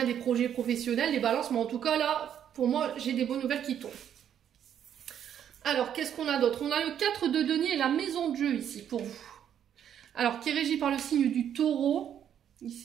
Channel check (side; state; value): left; quieter; 9.4 dB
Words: des projets professionnels, les balances. Mais en tout cas, là, pour moi, j'ai des bonnes nouvelles qui tombent. Alors, qu'est-ce qu'on a d'autre? On a le 4 de denier et la maison de jeu ici pour vous. Alors, qui est régi par le signe du taureau,